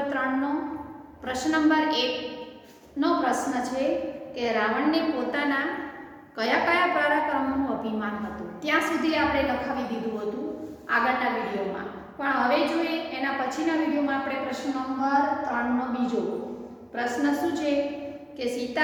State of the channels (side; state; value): both; identical; correlation 1.00